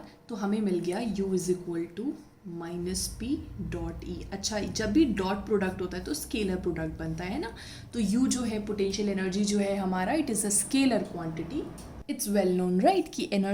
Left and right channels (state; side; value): identical; both; correlation 1.00